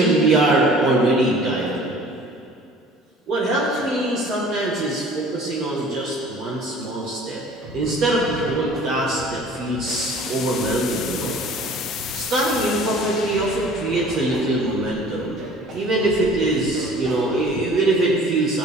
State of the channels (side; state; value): both; normal; correlation 0.48